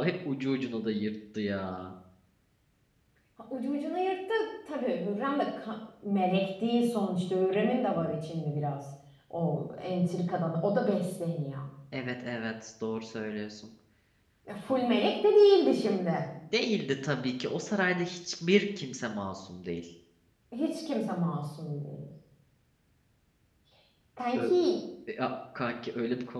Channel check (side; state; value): both; identical; correlation 1.00